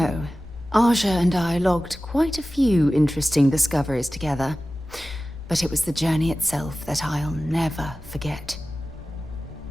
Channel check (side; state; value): both; normal; correlation 0.96